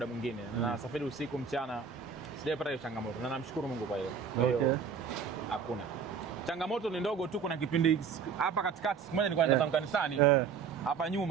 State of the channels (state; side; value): quieter; left; 6.3 dB